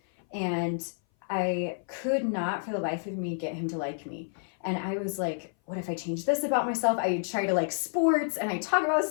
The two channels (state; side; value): silent; right; 57 dB below the other